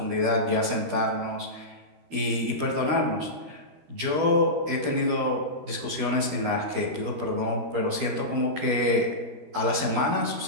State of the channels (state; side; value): late; left; 12 ms